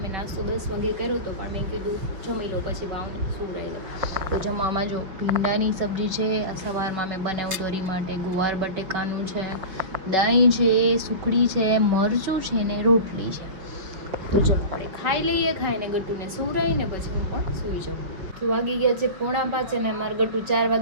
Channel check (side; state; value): left; late; 5.4 ms